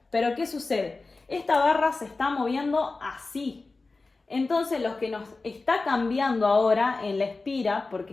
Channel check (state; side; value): quieter; right; 3.6 dB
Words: Pero ¿qué sucede? Esta barra se está moviendo así. Entonces lo que nos está cambiando ahora en la espira, porque